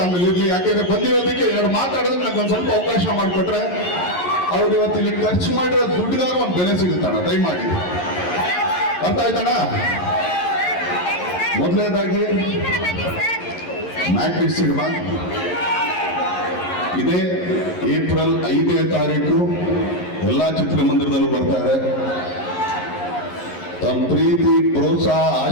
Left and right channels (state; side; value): late; right; 11 ms